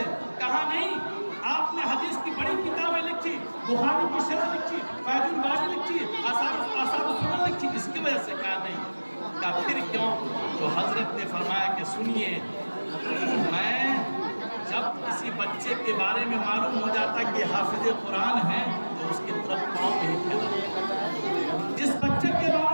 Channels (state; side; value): inverted; both; correlation -1.00